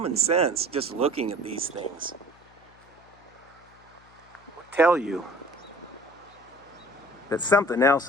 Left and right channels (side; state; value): left; noise; hum, 27 dB below the sound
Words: sense, just looking at these things, will tell you that something else